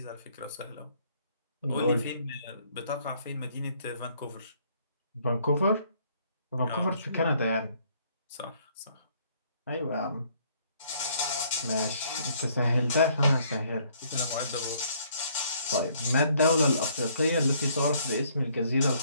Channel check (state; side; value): inverted; both; correlation -0.65